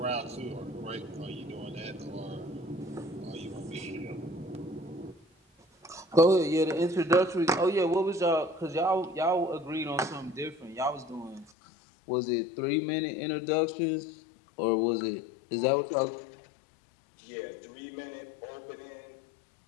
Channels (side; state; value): right; drops out; at 11.5 s